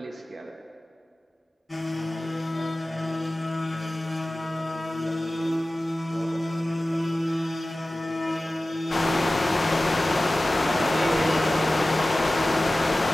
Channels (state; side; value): normal; both; correlation 0.96